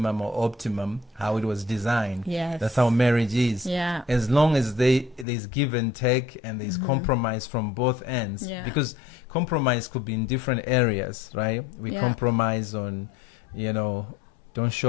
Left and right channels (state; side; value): drops out; right; at 5.2 s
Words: or optimum, how it was designed. Yes. That's how marriage is. Yeah. As long as there's give and take and there's compromise from both ends. Yeah. Because compromise could be in different areas, right? We Yeah. compromise on, don't